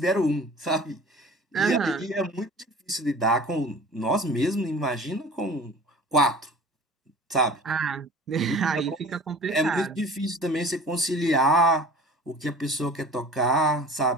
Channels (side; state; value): both; normal; correlation 0.43